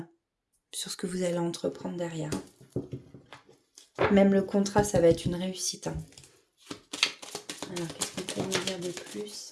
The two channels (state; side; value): identical; both; correlation 1.00